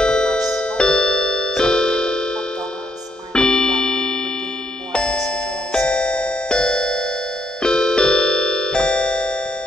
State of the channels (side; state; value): both; normal; correlation 0.73